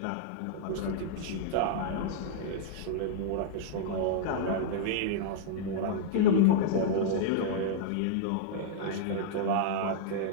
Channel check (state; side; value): different; both; correlation -0.01